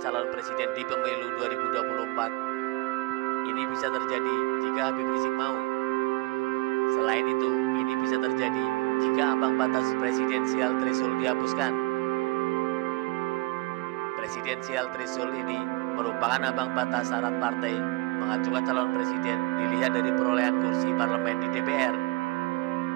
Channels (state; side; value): quieter; left; 22.5 dB